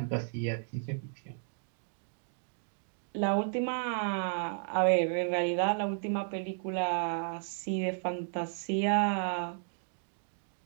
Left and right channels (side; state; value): left; silent; digital silence